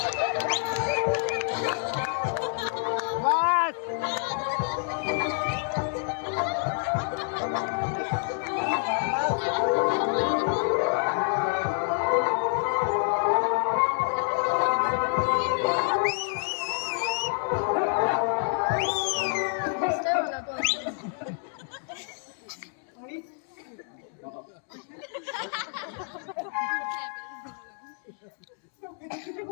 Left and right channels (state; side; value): silent; right; 59 dB below the other